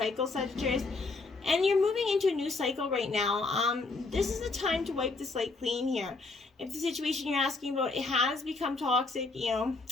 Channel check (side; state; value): right; quieter; 3.7 dB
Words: Sagittarius. And you're moving into a new cycle right now. This is the time to wipe the slate clean here. If the situation you're asking about, it has become toxic,